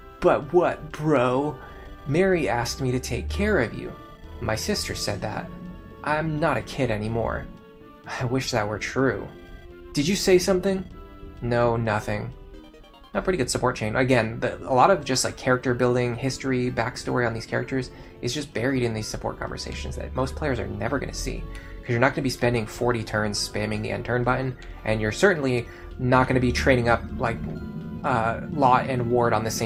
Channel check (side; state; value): both; identical; correlation 1.00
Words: what, bro? Mary asked me to take care of you. My sister said that. I'm not a kid anymore. I wish that were true. Did you say something? No, nothing. A pretty good support chain. Again, a lot of just like character building, history, backstory on these characters is just buried in these support conversations that most players are never going to see. Because you're not going to be spending 40 turns spamming the end turn button, and you're certainly not going to be training up like Lot and Ward on the